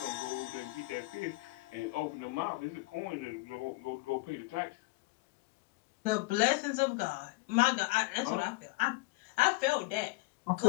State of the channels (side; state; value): right; quieter; 23.2 dB